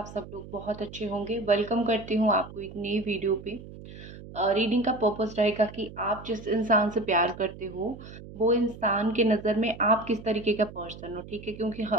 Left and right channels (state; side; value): noise; right; hum, 15 dB below the sound